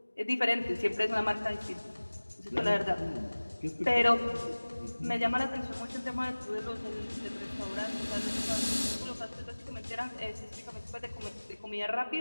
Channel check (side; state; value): both; inverted; correlation -1.00